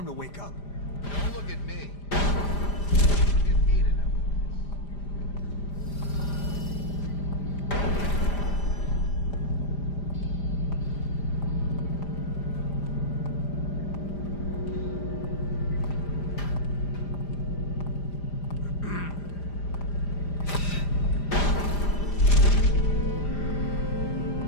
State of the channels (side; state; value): right; late; 5.0 ms